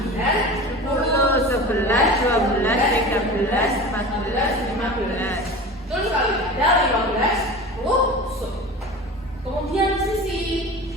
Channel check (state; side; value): normal; both; correlation 0.34